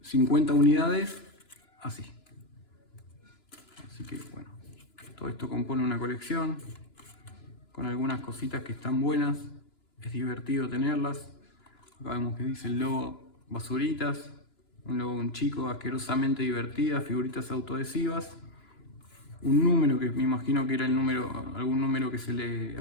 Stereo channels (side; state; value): right; late; 2.9 ms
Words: 50 unidades así. Así que bueno, todo esto compone una colección con algunas cositas que están buenas. Es divertido tenerlas. Acá vemos que dice el logo basuritas, un logo de un chico asquerosamente divertida, figuritas autoadhesivas, un número que me imagino que era el número, algún número que se le